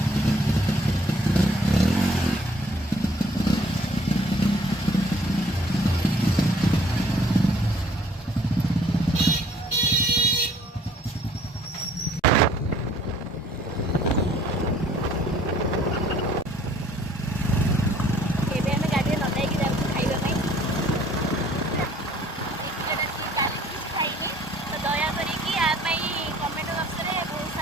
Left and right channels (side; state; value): both; normal; correlation 0.58